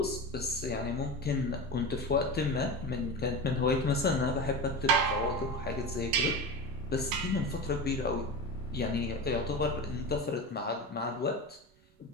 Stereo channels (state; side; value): normal; both; correlation 0.25